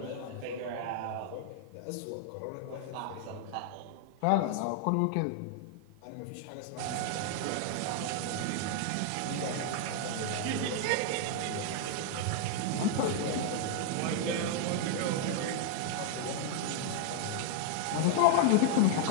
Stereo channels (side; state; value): both; different; correlation -0.01